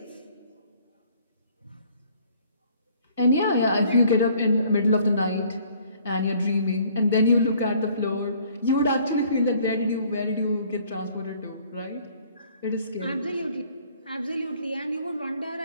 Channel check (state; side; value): inverted; both; correlation -0.58